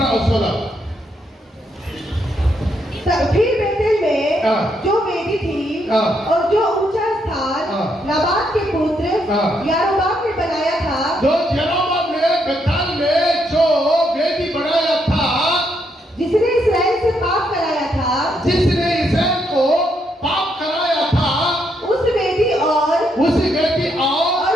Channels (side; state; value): both; normal; correlation 0.76